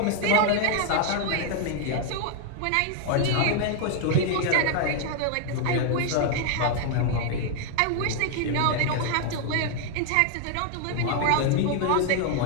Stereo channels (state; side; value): different; both; correlation 0.00